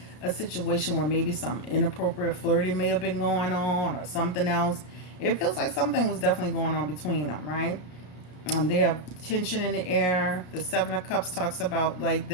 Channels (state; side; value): late; right; 33 ms